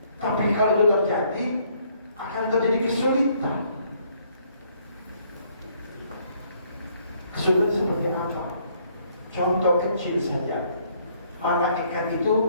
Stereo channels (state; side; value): inverted; both; correlation -0.66